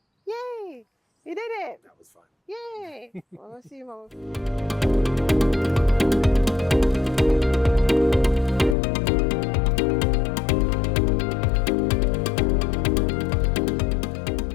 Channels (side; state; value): right; drops out; at 8.8 s